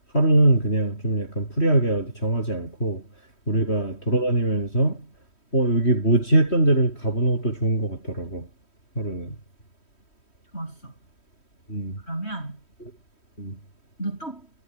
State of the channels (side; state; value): right; late; 3.1 ms